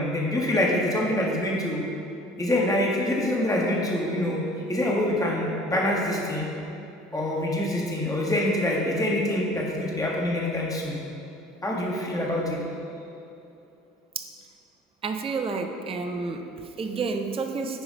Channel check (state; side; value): normal; both; correlation 0.50